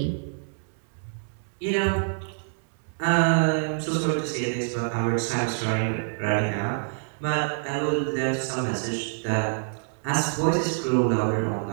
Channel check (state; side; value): silent; left; digital silence